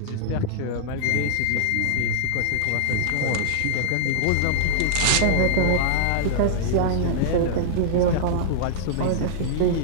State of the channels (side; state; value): both; different; correlation -0.02